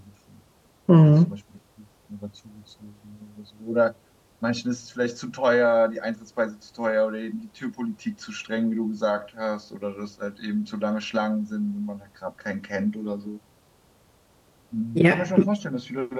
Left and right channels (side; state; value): both; identical; correlation 1.00